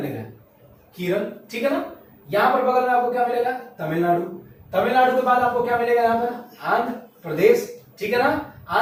केरल, ठीक है ना। यहां पर बगल में आपको क्या मिलेगा, तमिलनाडु के बाद आपको क्या मिलेगा, यहां पर आंध्र प्रदेश, ठीक है ना।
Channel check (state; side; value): identical; both; correlation 1.00